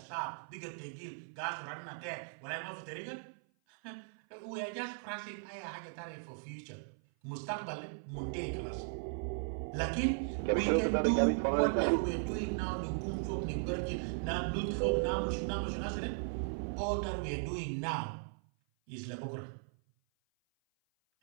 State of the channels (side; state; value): left; silent; 53 dB below the other